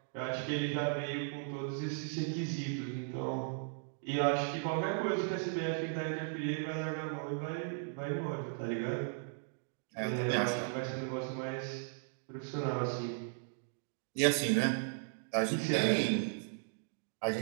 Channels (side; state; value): left; silent; digital silence